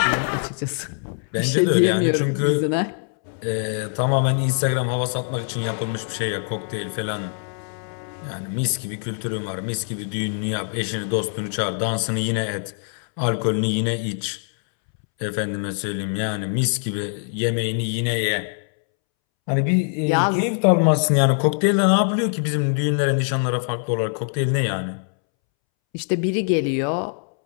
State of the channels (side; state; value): right; silent; 63 dB below the other